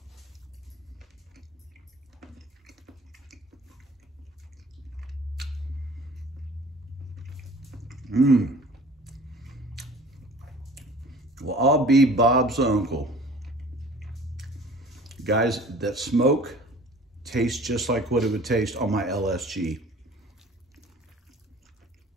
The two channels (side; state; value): both; normal; correlation 0.47